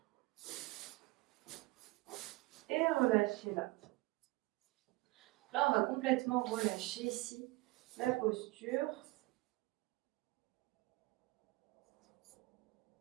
et relâchez là. Là, on va complètement relâcher ici la posture.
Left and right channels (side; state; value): left; quieter; 21.9 dB